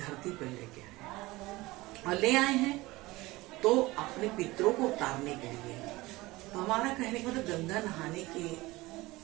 पर लेके आए और ले आए हैं तो अपने पितरों को उतारने के लिए। तो हमारा कहने का मतलब गंगा नहाने के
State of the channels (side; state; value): left; quieter; 20.3 dB